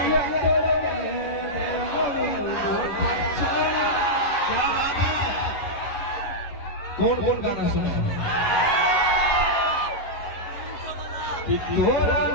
कौन कौन गाना सुना कि तोरा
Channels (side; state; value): right; late; 11 ms